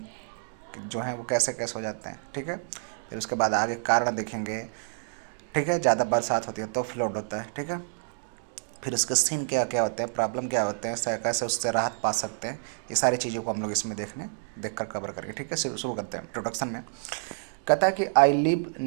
जो है वो कैसे कैसे हो जाते हैं, ठीक है। फिर उसके बाद आगे कारण देखेंगे, ठीक है। ज़्यादा बरसात होती है तो फ्लड होता है, ठीक है। फिर उसके सीन क्या क्या होते हैं, प्रॉब्लम क्या होते हैं, कैसे उससे राहत पा सकते हैं, ये सारी चीज़ों को हम लोग इसमें देख कर कवर करेंगे, ठीक है। शुरू करते हैं इंट्रोडक्शन में। कहता है कि I live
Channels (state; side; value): silent; left; digital silence